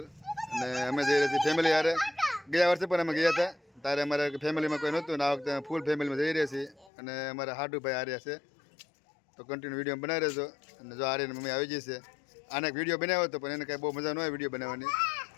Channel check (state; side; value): drops out; right; at 6.9 s